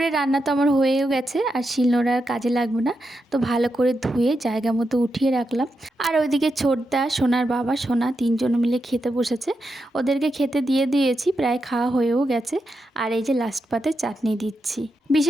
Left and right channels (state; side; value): normal; both; correlation 0.86